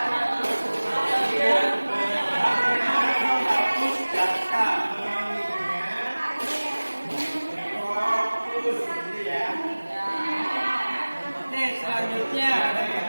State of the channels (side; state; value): both; inverted; correlation -1.00